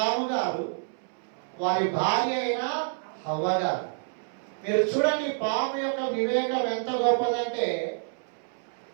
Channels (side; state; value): left; silent; 59 dB below the other